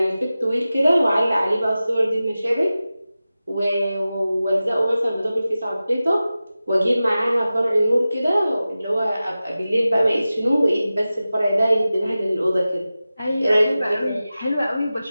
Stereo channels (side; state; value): both; inverted; correlation -0.95